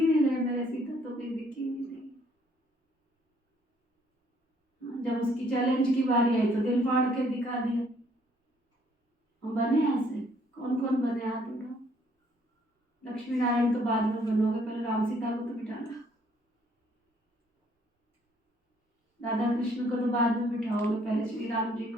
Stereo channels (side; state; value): both; normal; correlation 0.65